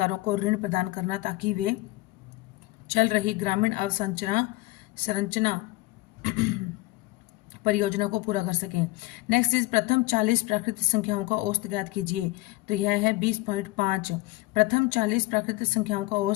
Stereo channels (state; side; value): quieter; right; 20.7 dB